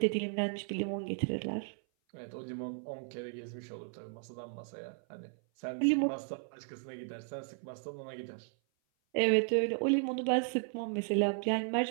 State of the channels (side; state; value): left; silent; 54 dB below the other